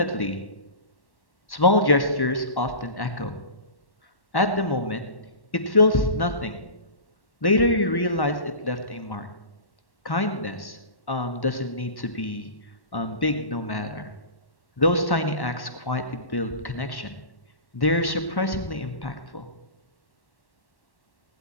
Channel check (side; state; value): right; late; 1.1 ms